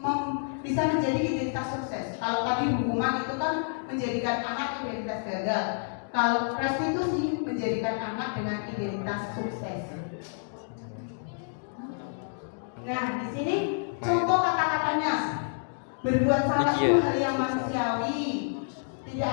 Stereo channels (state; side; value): silent; right; digital silence